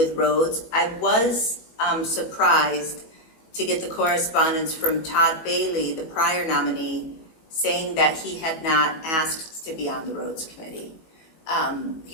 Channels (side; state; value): right; late; 19 ms